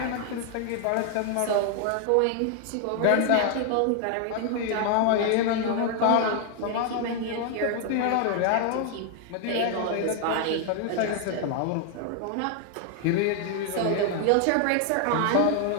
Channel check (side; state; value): both; different; correlation 0.00